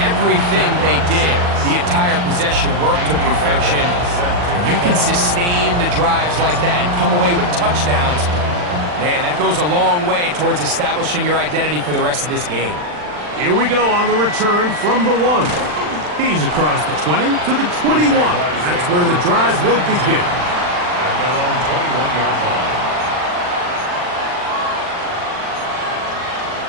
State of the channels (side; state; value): left; late; 40 ms